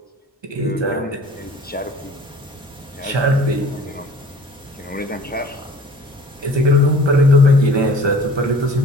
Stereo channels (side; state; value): both; normal; correlation 0.48